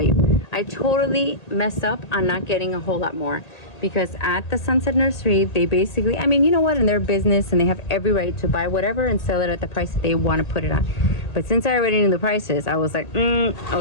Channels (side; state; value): right; late; 1.8 ms